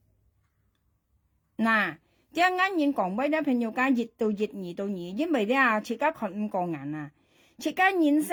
nè chứ ngay nhìn còn bây giờ朋友間熱到熱因為咧自家看5個人啊自家人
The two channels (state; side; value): identical; both; correlation 1.00